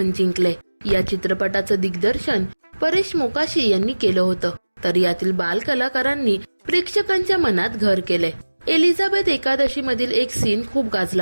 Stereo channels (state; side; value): inverted; both; correlation -1.00